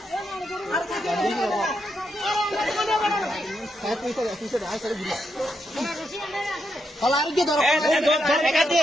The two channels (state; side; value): normal; both; correlation 0.81